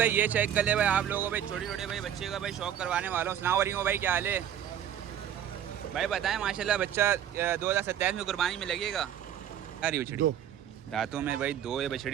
ये चेक कर ले भाई आप लोगों को भाई छोटे छोटे भाई बच्चे का भाई शौक करवाने वाला हूँ। सलाम वालेकुम भाई, क्या हाल है भाई? बताएं माशाल्लाह बच्चा 2027 में कुर्बानी में लगेगा। क्या रही बछड़ी दांतों में भाई दो है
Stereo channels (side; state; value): left; quieter; 10.1 dB